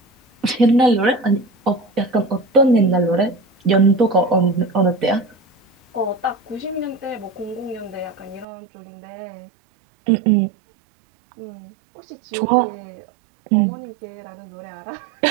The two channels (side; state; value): left; drops out; at 8.5 s